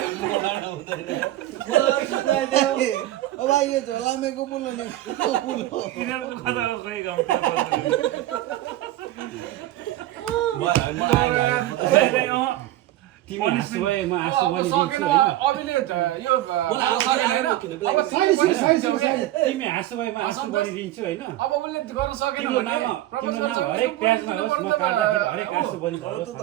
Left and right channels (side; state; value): left; quieter; 14.9 dB